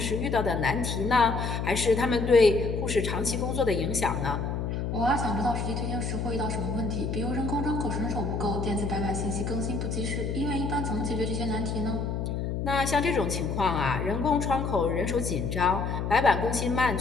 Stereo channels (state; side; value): noise; left; hum, 2 dB below the sound